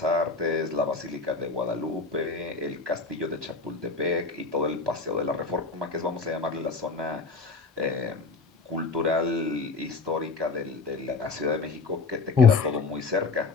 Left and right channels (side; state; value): right; quieter; 4.2 dB